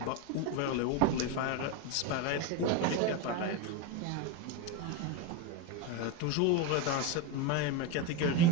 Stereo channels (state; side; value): different; both; correlation 0.04